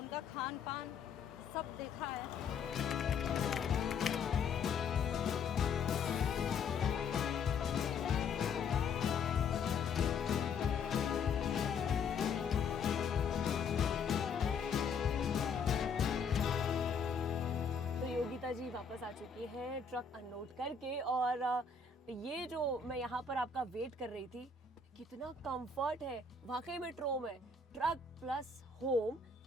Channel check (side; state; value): right; quieter; 5.2 dB